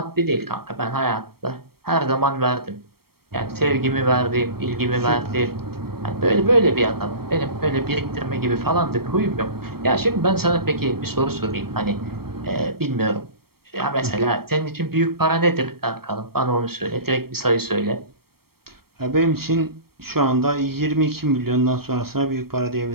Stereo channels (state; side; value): late; left; 0.94 ms